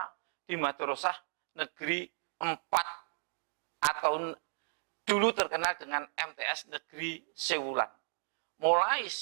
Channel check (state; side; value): silent; left; digital silence